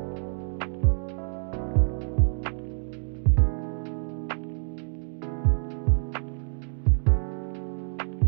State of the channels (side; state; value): left; silent; 60 dB below the other